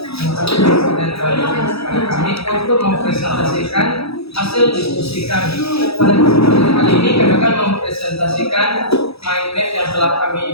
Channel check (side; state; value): right; late; 0.77 ms